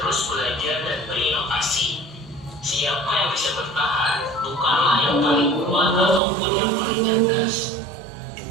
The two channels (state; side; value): drops out; left; at 6.2 s